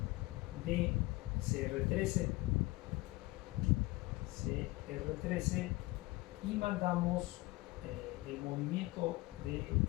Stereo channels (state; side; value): quieter; right; 20.7 dB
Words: de CR13 y mandamos el movimiento de